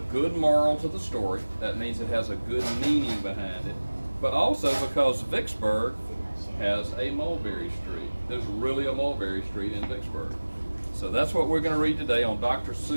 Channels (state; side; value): inverted; both; correlation -1.00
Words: good moral to the story. That means it has a good meaning behind it. But also because Vicksburg has a Mulberry Street. There's really a Mulberry Street in Vicksburg. So that's what we're going to read today on Dr.